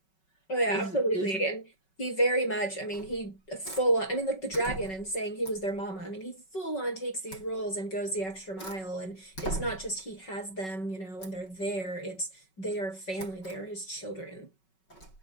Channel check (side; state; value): right; late; 5.3 ms